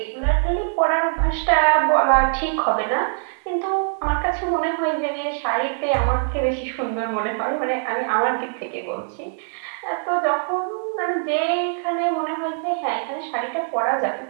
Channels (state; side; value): silent; left; digital silence